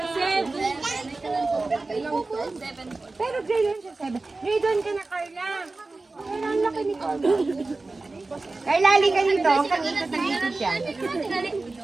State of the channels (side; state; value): left; quieter; 3.4 dB